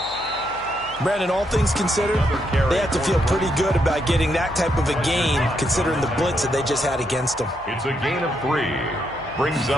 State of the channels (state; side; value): noise; left; hum, 22 dB below the sound